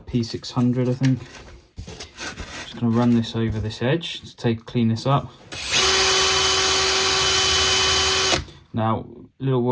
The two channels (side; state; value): both; identical; correlation 1.00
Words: P600 I think. Just going to run this over this edge to clean this up. Now, little